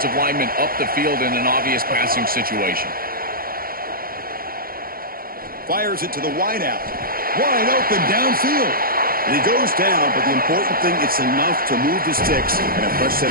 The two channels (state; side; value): late; left; 0.42 ms